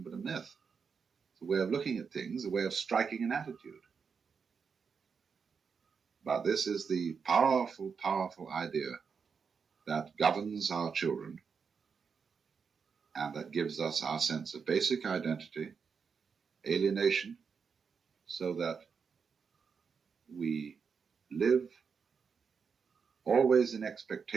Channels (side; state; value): left; quieter; 5.9 dB